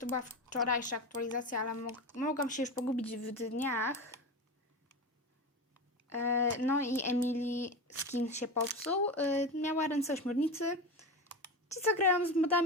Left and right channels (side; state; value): both; normal; correlation 0.23